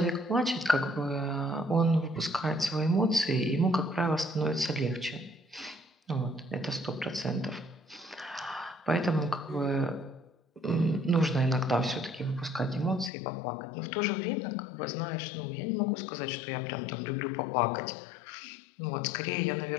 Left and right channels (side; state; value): right; drops out; at 13.1 s